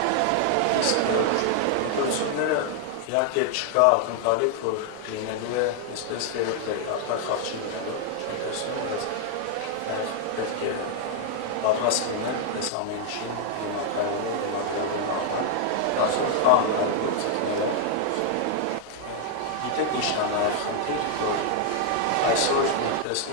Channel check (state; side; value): different; both; correlation 0.00